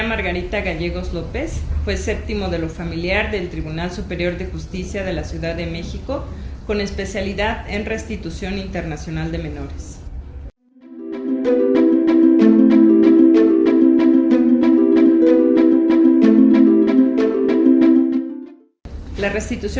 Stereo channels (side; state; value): both; identical; correlation 1.00